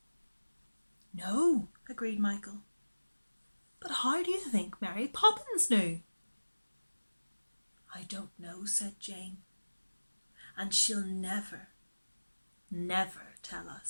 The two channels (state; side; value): inverted; both; correlation -1.00